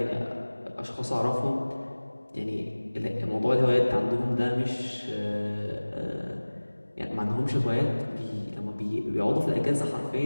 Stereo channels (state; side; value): inverted; both; correlation -1.00